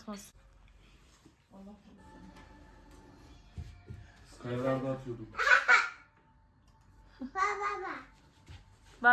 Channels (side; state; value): both; identical; correlation 1.00